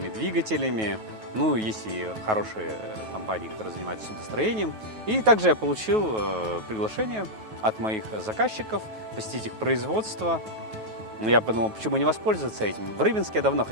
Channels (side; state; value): left; late; 9.3 ms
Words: двигателями. Ну, есть и хорошие компании, которые занимаются судостроением. И также я получил приглашение от моих заказчиков посетить их производство. Я подумал, почему не воспользоваться этим. В Рыбинске я давно